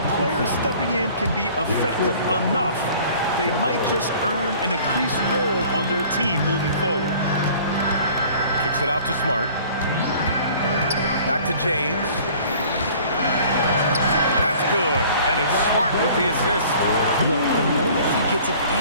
players stepping in can be effective enough, they might just earn an increased role on their team moving forward. Kicks it out to Smart. Back to James. That's good. And it's Smart with the assist. Look, the moment he gets it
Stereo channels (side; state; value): both; inverted; correlation -0.50